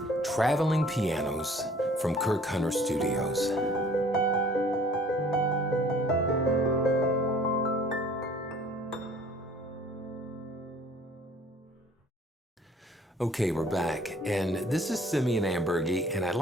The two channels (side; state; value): both; normal; correlation 0.52